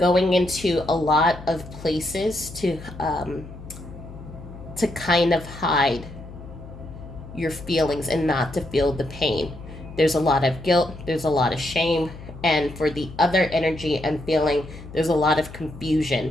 into a lot of places to kind of hide your feelings and not to feel the pain. There's a lot of guilt, there's a lot of shame, and for the other energy I'm feeling, there's a lot of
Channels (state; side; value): noise; left; hum, 15 dB below the sound